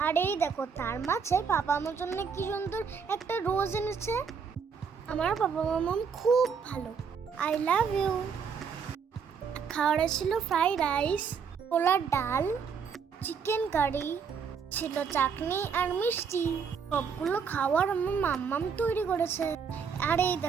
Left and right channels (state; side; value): quieter; left; 6.3 dB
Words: আর এই দেখো, তার মাঝে পাপা আমার জন্য কি সুন্দর একটা রোজ এনেছে। আমার বাবা মাম্মাম খুব ভালো, আই লাভ ইউ। খাওয়ারে ছিল ফ্রাইড রাইস, ছোলার ডাল, চিকেন কারি, ছিল চাটনি আর মিষ্টি। সবগুলো খাওয়ার আমার মাম্মাম তৈরি করেছে। আর এই